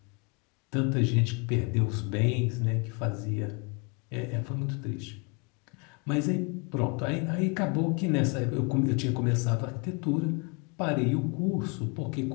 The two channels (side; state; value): right; quieter; 32.7 dB